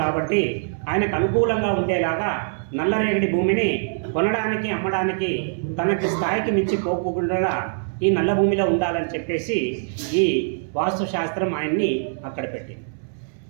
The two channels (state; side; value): silent; left; 63 dB below the other